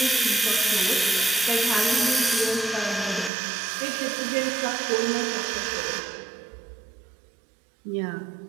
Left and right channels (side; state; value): left; drops out; at 3.3 s